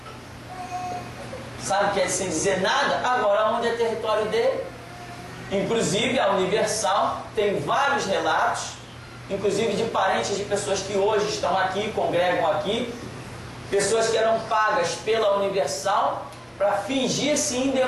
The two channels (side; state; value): both; identical; correlation 1.00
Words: Sabe o que é sem dizer nada? Agora, onde é território dele? Inclusive, a Universal tem vários relatos, inclusive de parentes de pessoas que hoje estão aqui, congregam aqui, pessoas que eram pagas pela Universal para fingir-se